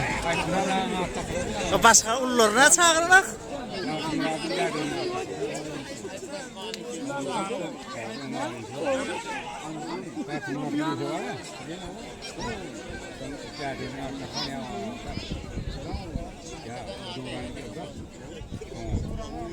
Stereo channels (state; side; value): identical; both; correlation 1.00